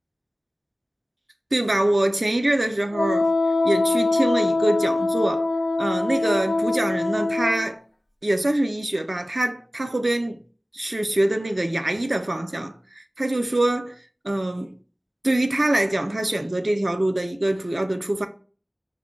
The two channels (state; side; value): normal; both; correlation 0.97